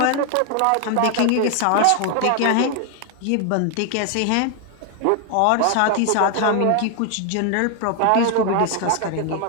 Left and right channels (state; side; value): different; both; correlation 0.00